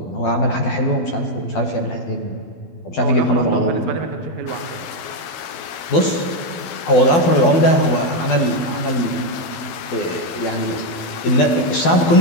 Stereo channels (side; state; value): right; late; 13 ms